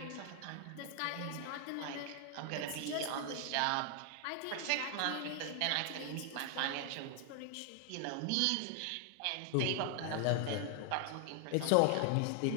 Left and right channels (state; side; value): different; both; correlation 0.00